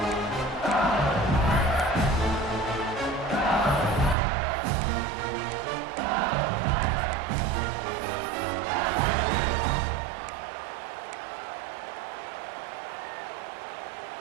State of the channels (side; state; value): left; drops out; at 4.2 s